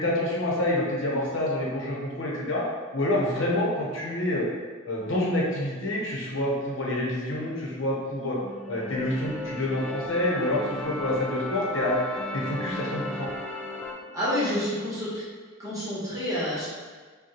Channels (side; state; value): both; normal; correlation 0.23